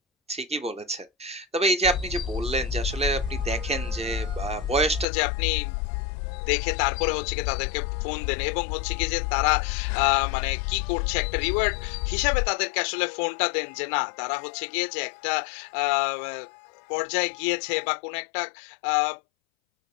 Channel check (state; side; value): drops out; right; at 5.1 s